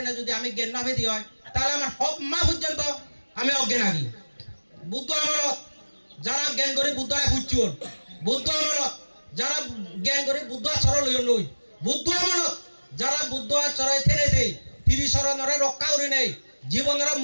না যদি আমি জ্ঞান নভেদি হয় তাহলে আমার সব মা পর্যন্ত আমি অজ্ঞান আগি বুদ্ধ আমলত যারা জ্ঞান করে বুদ্ধরা খুঁজছুন বুদ্ধ আমলত যারা জ্ঞান করে বুদ্ধ আচরণ লই বুদ্ধ আমলত যারা বুদ্ধ আচরণ থেনে দেয় তিরিশরণরে রক্ষা করে নেই জীবনের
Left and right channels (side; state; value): both; inverted; correlation -1.00